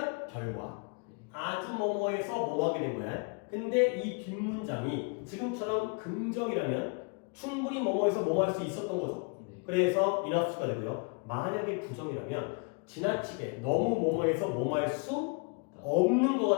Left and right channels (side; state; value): right; quieter; 34.6 dB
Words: 결과 아주 뭐뭐해서 뭐 하게 된 거야. 근데 이 뒷문장이 지금처럼 긍정이라면 충분히 뭐뭐해서 뭐 할 수 있었던 거죠. 네. 그래서 enough가 되고요. 만약에 부정이라면 지나치게 너무 뭐뭐해서 뭐 할 수 없는